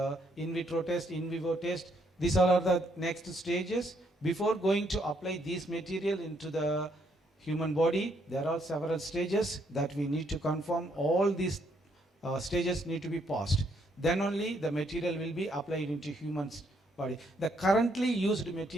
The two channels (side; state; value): both; normal; correlation 0.72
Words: in vitro test, in vivo test. These are the next stages. Before going to apply this material into the human body, there are several stages that we need to confirm. All these stages need to be passed. Then only the material will be applied into human's body. The currently used